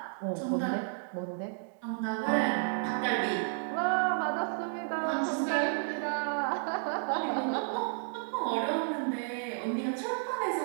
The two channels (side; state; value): left; silent; digital silence